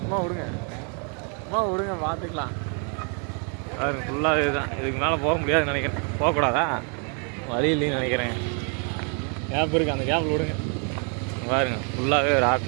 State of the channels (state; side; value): quieter; left; 38.5 dB